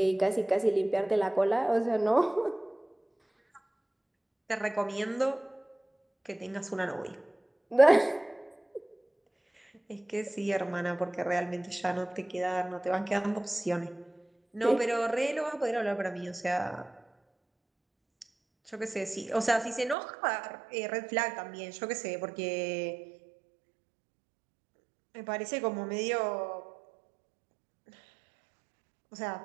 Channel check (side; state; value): left; drops out; at 20.0 s